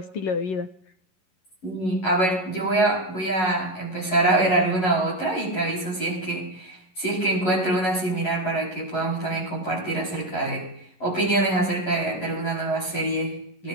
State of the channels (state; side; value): late; right; 11 ms